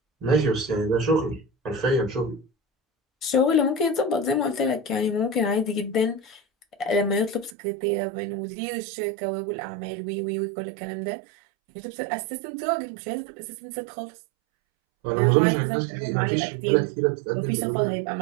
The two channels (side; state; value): left; drops out; at 7.6 s